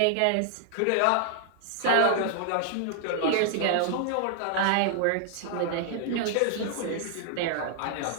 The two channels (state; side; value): different; both; correlation -0.01